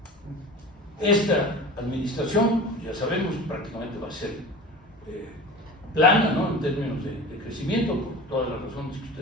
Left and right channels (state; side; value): normal; both; correlation 0.35